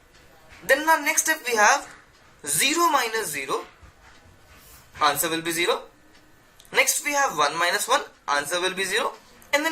Then our next step we have 0 minus 0. Answer will be 0. Next we have 1 minus 1. Answer will be 0. And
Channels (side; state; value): both; identical; correlation 1.00